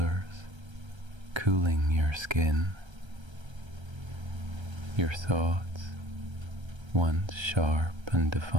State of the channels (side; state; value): left; late; 1.3 ms